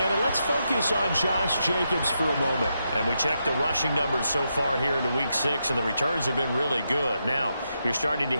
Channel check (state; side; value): inverted; both; correlation -0.84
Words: and let's focus on Josh Jacobs for a moment. And we checked the rushing numbers so far here into Week 6, and the returns have been really good. Now, you're starting to